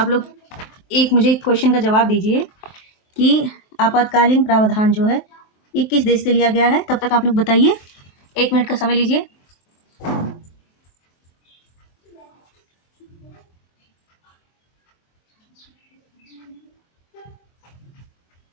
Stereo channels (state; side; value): late; right; 23 ms